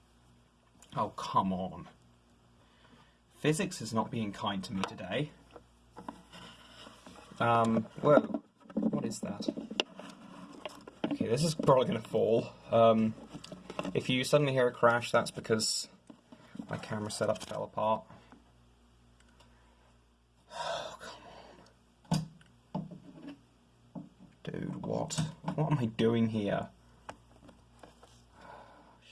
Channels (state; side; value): identical; both; correlation 1.00